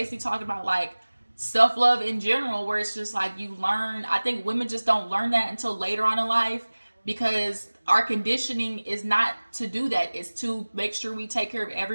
talking about like self-love in general, where it's just like you learn. I think women just don't learn that until later on in life because our conditioning is not to do that. It's to make sure we take care of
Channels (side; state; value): both; inverted; correlation -1.00